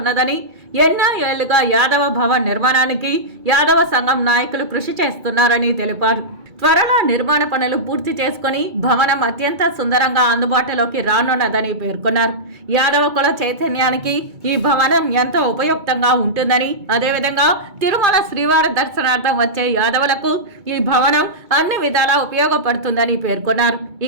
ఎన్నో ఏళ్లుగా యాదవ భవన్ నిర్మాణానికి యాదవ సంఘం నాయకులు కృషి చేస్తున్నారని తెలిపారు. త్వరలో నిర్మాణ పనులు పూర్తి చేసుకుని భవనం అత్యంత సుందరంగా అందుబాటులోకి రానున్నదని పేర్కొన్నారు. యాదవ కుల చైతన్యానికి ఈ భవనం ఎంతో ఉపయుక్తంగా ఉంటుందని, అదేవిధంగా తిరుమల శ్రీవారి దర్శనార్థం వచ్చే యాదవులకు ఈ భవనం అన్ని విధాలా ఉపయోగపడుతుందని పేర్కొన్నారు.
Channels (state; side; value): late; left; 2.2 ms